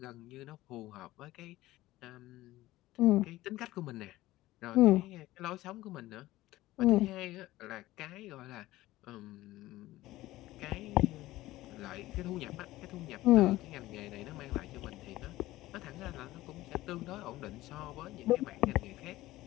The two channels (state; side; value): quieter; right; 16.9 dB